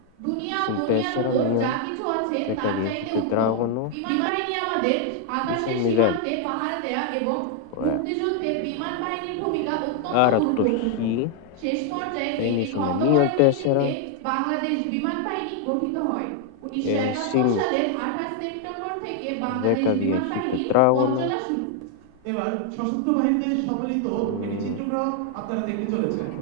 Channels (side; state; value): both; different; correlation 0.00